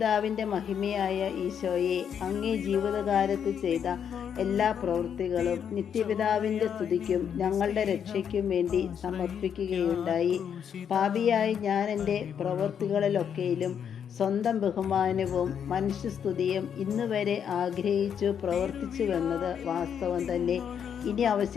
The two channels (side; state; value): right; quieter; 8.1 dB